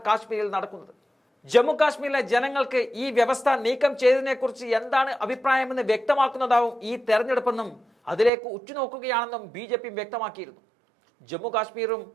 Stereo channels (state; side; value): drops out; left; at 8.3 s